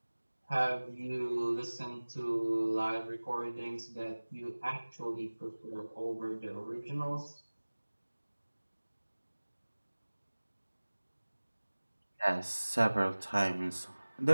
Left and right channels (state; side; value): inverted; both; correlation -1.00